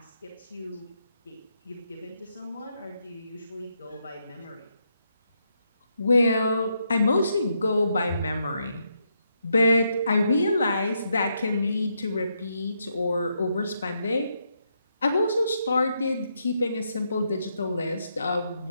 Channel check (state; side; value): inverted; both; correlation -0.79